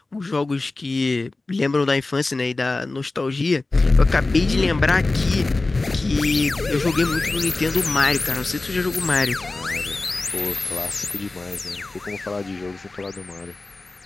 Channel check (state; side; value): quieter; right; 3.3 dB